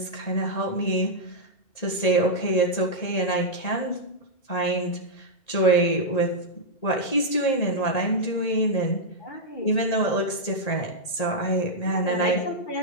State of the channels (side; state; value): right; late; 1.8 ms